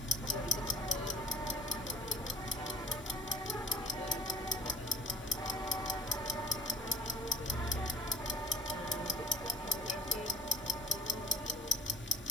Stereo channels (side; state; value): both; normal; correlation 0.50